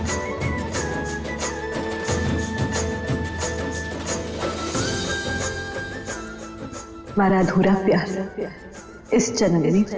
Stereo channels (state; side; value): identical; both; correlation 1.00